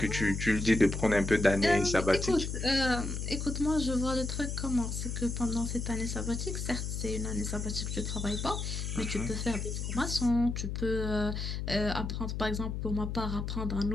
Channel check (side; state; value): left; noise; hum, 3 dB below the sound